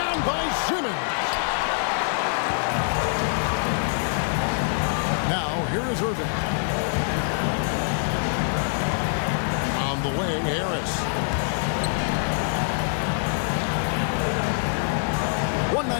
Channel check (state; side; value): silent; right; digital silence